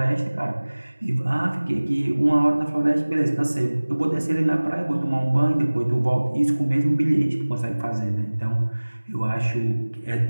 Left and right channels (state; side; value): inverted; both; correlation -1.00